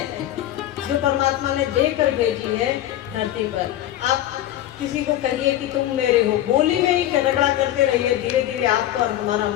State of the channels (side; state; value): right; quieter; 13.1 dB